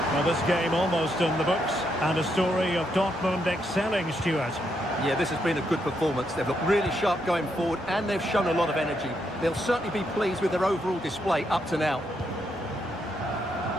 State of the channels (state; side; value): normal; both; correlation 0.79